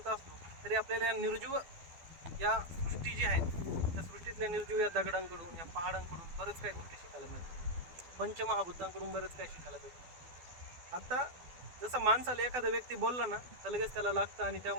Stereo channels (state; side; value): late; left; 12 ms